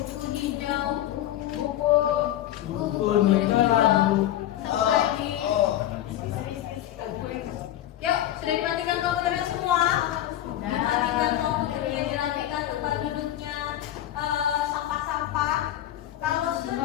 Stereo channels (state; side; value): quieter; right; 12.8 dB